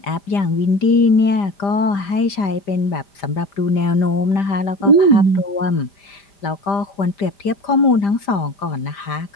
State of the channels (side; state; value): right; late; 5.0 ms